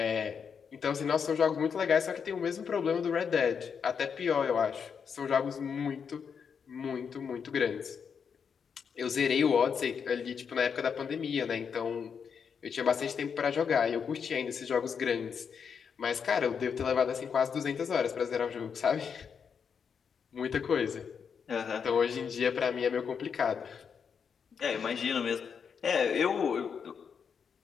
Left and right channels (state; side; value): quieter; right; 6.6 dB